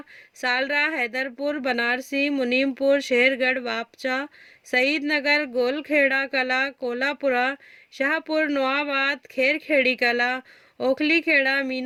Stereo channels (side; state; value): both; identical; correlation 1.00